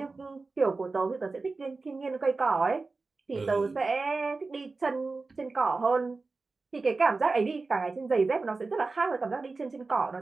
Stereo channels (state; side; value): quieter; left; 3.8 dB